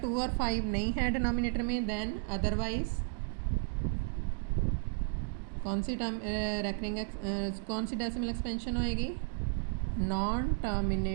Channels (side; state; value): left; silent; digital silence